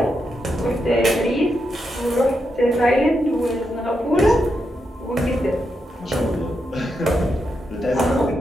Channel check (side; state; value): both; normal; correlation 0.84